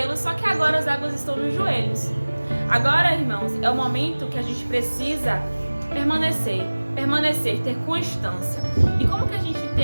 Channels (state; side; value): inverted; both; correlation -1.00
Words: só que agora as águas estão nos joelhos. Agora, irmãos, é o momento que a gente precisa permanecer, ter constância. E como que a gente